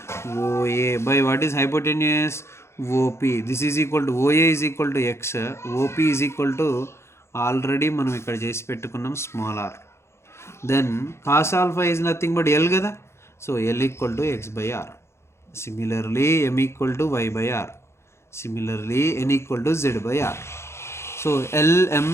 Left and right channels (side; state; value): right; late; 0.13 ms